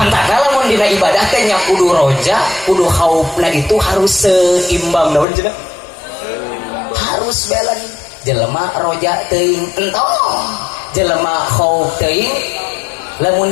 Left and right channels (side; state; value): right; drops out; at 5.2 s